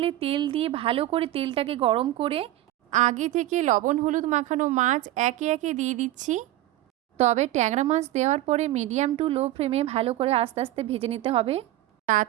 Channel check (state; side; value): quieter; left; 15.2 dB